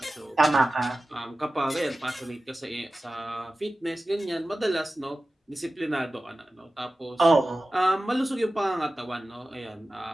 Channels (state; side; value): normal; both; correlation 0.95